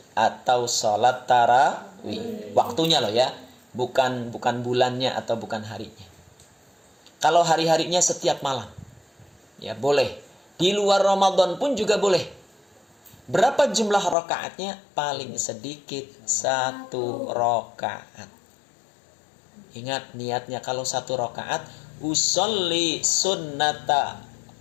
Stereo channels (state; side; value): drops out; right; at 14.2 s